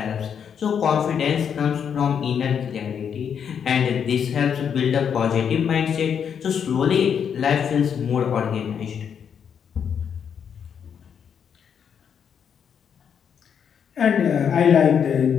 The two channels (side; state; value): right; quieter; 7.7 dB